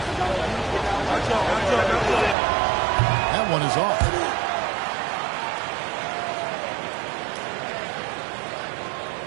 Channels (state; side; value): drops out; left; at 2.4 s